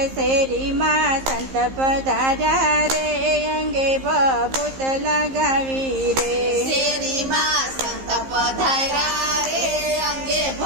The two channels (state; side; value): late; left; 15 ms